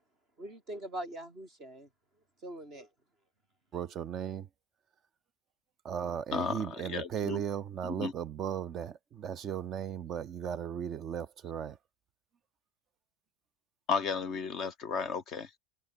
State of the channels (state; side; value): normal; both; correlation 0.46